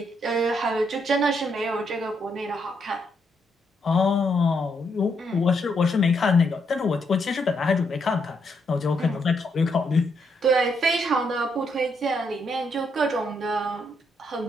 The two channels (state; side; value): normal; both; correlation 0.77